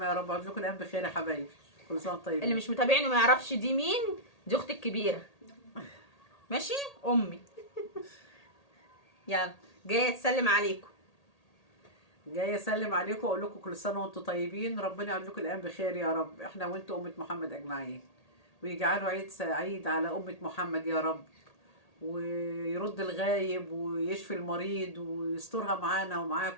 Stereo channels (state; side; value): late; right; 1.8 ms